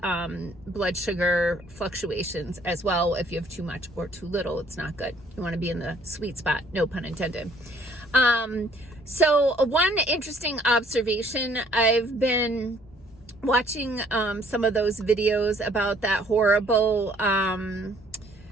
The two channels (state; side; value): normal; both; correlation 0.61